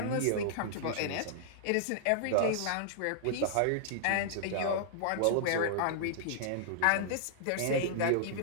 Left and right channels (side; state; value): both; different; correlation -0.01